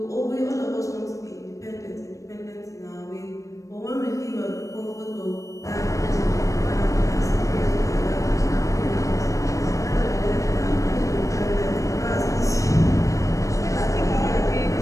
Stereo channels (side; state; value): right; late; 0.16 ms